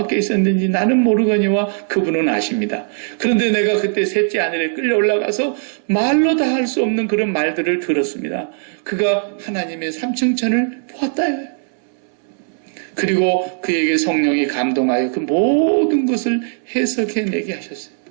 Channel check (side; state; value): left; silent; 67 dB below the other